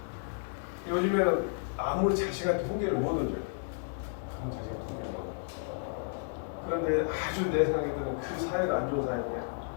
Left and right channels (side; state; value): right; silent; digital silence